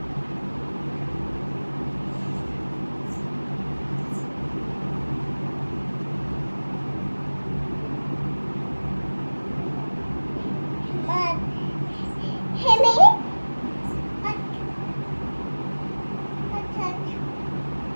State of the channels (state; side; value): inverted; both; correlation -1.00